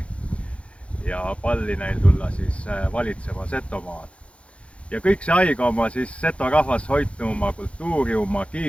ja palli neil tulla siis valitsema Setomaad. Ja kõik see aega oma siis Seto rahvas hoidnu oma kultuuri, oma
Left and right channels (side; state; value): right; late; 0.061 ms